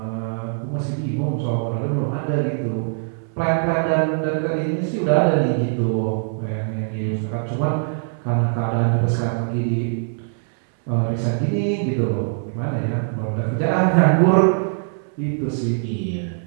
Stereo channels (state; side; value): silent; left; 61 dB below the other